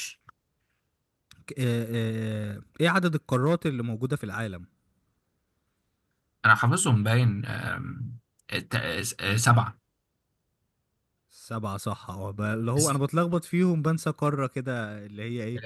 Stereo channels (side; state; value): both; identical; correlation 1.00